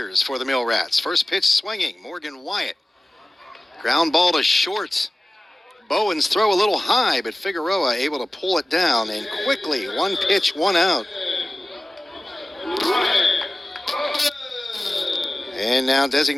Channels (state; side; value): normal; both; correlation 0.96